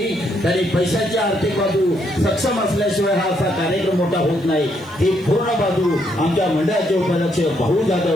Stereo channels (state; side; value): noise; right; hiss, 30 dB below the sound